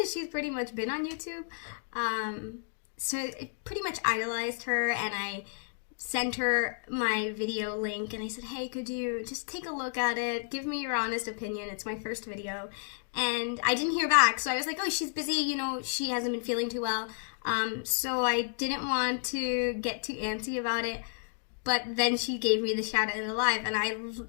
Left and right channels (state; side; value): silent; right; digital silence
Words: as she's pretty much been on YouTube. So I pretty much idolized her, and I sent her my video link and I said, hey, could you just take a look at it, give me your honest opinion, it's my first video. And I didn't hear back, so I was like, oh, she's busy, you know, she hasn't been feeling too well. So I didn't want to get too antsy about it, but then she gave me the shout out in the live and I